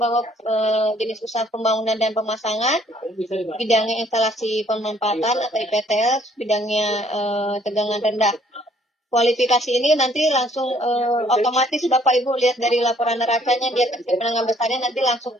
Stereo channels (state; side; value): normal; both; correlation 0.62